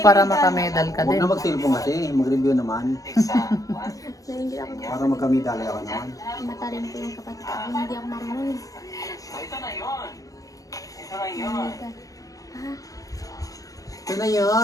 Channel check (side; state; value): right; late; 0.17 ms